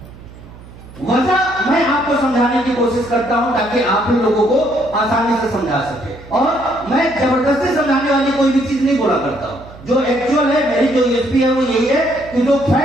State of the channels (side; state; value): right; noise; hum, 19 dB below the sound